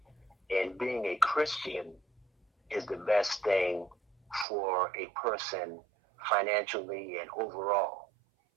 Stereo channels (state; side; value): drops out; left; at 4.5 s